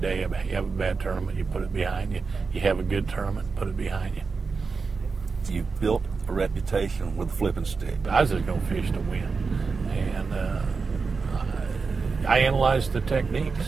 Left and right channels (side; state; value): left; quieter; 4.7 dB